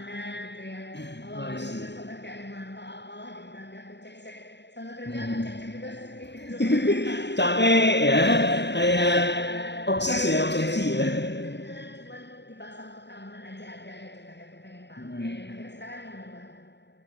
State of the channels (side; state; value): right; late; 0.51 ms